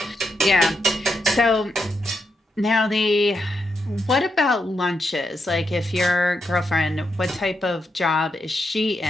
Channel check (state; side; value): normal; both; correlation 0.83